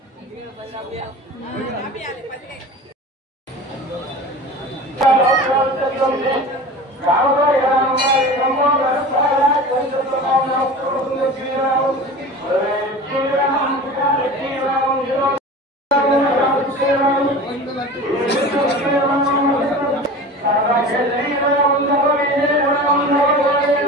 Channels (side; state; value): both; normal; correlation 0.35